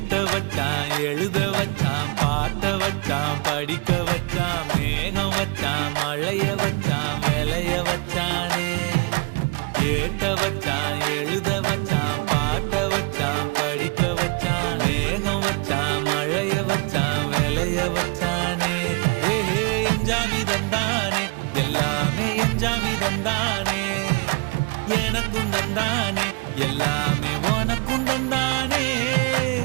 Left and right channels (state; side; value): quieter; left; 30.1 dB